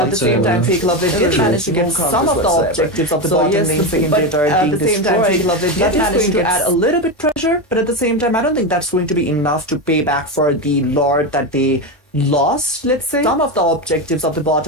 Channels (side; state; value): both; normal; correlation 0.14